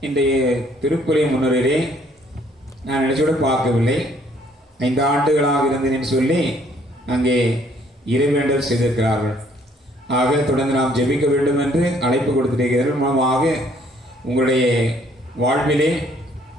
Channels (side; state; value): both; normal; correlation 0.64